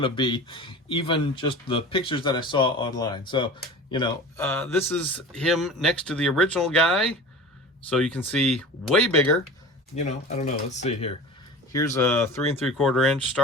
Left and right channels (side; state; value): both; normal; correlation 0.36